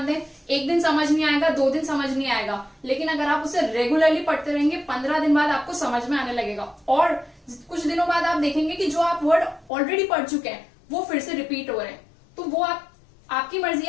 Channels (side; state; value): right; drops out; at 9.7 s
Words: दें। एक दिन समझ नहीं आएगा, 2 दिन समझ नहीं आएगा, लेकिन अगर आप उसे रेगुलरली पढ़ते रहेंगे 15 दिन बाद आपको समझ में आने लगेगा। और कुछ दिनों बाद आप देखेंगे कि जो आप वर्ड ऑलरेडी पढ़ चुके हैं वो फिर से रिपीट हो रहे हैं। तो वो आपकी मर्जी